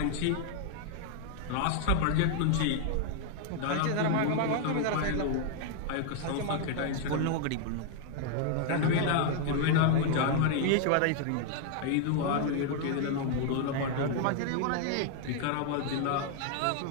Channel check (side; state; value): both; different; correlation 0.00